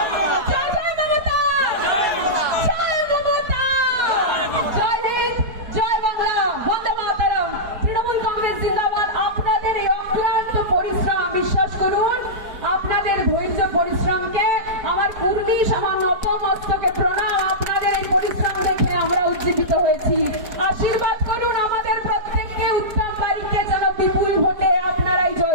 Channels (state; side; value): late; left; 4.6 ms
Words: জয় জয় মমতা, জয় মমতা, জয় হিন্দ, জয় বাংলা, বন্দে মাতরম। তৃণমূল কংগ্রেস জিন্দাবাদ। আপনাদের এই অক্লান্ত পরিশ্রম, বিশ্বাস করুন, আপনাদের ধৈর্য পরিশ্রমকে আমার কুর্মি সামান্য অপমস্তকে প্রণাম। আপনাদের এই পরিশ্রম দেখে আমরা উজ্জীবিত হয়েছি। আশীর্বাদ করুন আমাদের প্রত্যেককে, উত্তম বাড়িকে যেন বিপুল ভোটে আপনারাই